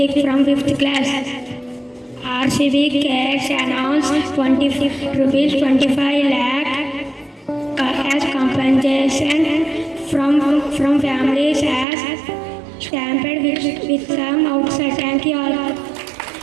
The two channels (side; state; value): left; drops out; at 11.9 s